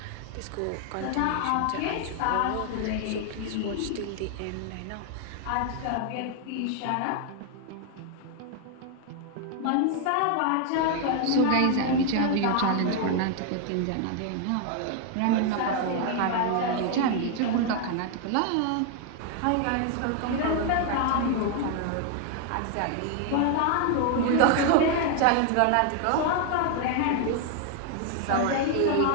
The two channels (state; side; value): different; both; correlation 0.00